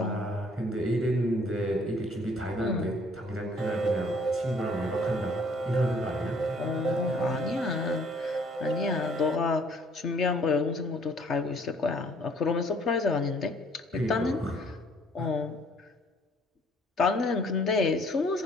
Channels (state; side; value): normal; both; correlation 0.59